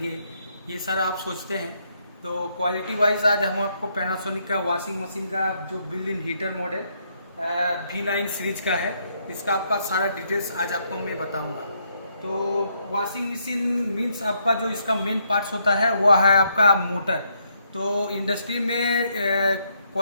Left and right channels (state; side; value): inverted; both; correlation -0.74